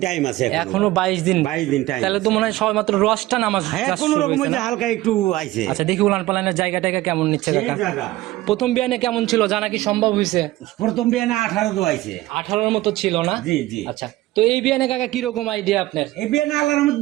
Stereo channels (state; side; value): quieter; left; 17.2 dB